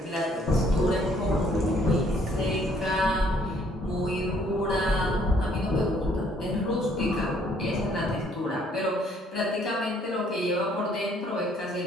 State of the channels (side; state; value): both; normal; correlation 0.64